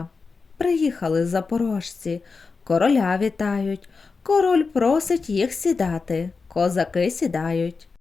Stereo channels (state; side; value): quieter; right; 4.6 dB